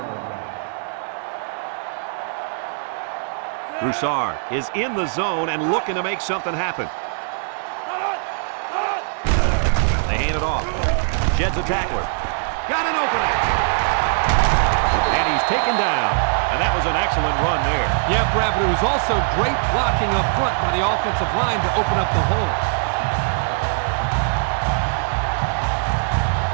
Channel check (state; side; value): silent; left; 64 dB below the other